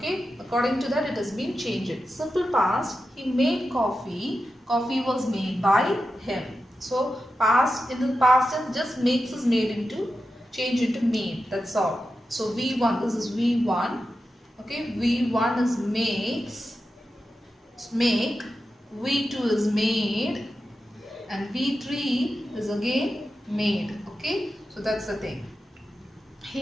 according to that it has been changed. Simple past, he made coffee. Coffee was made by him. So past, in the past tense, just makes is made into, change into made. That's all. So V1, this is V1. Okay, V1 is makes, make. V2 is made, and V3 is again made. Okay, so that's the thing.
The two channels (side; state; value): both; normal; correlation 0.91